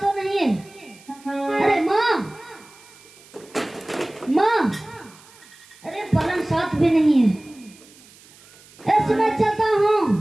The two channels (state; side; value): noise; right; hiss, 25 dB below the sound